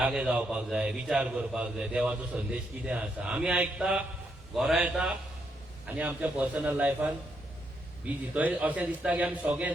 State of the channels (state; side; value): normal; both; correlation 0.77